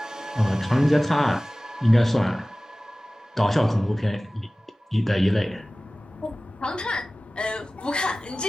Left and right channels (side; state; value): both; normal; correlation 0.97